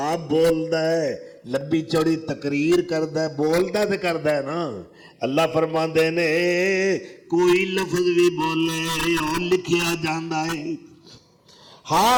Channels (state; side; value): identical; both; correlation 1.00